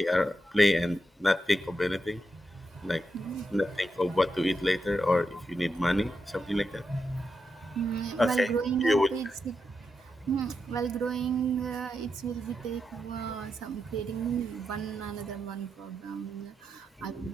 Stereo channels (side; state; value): both; normal; correlation 0.86